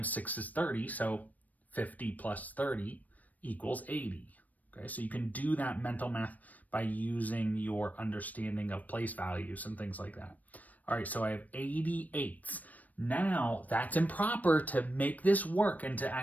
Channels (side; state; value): right; late; 0.077 ms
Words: 6 is 30, so 50 plus 30 equals 80. Okay, so you can do that mental math by using your understanding of place values and things like that. All right, so I have 88. Now, that's improper. To make this work and to